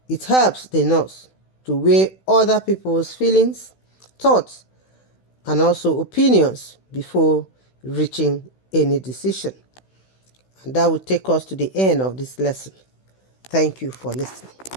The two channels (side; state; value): right; late; 16 ms